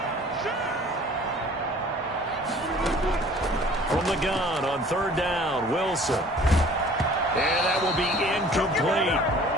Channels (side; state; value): both; normal; correlation 0.50